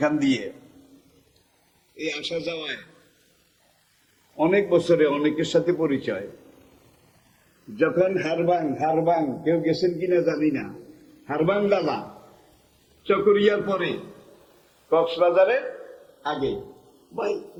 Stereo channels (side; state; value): both; identical; correlation 1.00